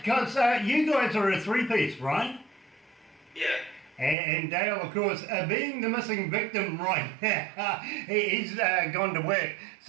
you guys are a three-piece, right? Yeah. And Dale, of course, being the missing victim right now, he's gone to work.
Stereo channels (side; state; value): left; drops out; at 4.2 s